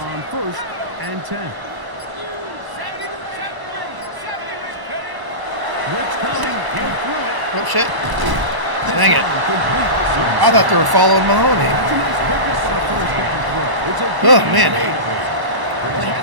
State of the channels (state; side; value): late; left; 1.0 ms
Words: on 1st and 10. 70. Blitz coming. He'll throw it. Oh, shit. This Dang it. one complete. I thought they were following Mahoney. That's a nice pickup on a first down throw. It's a Oh, gain man. of 8. Well, he